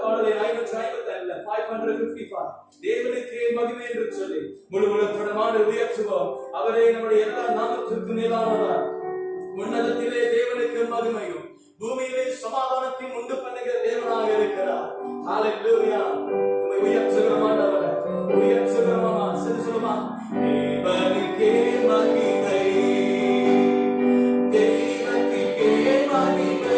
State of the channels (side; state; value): both; identical; correlation 1.00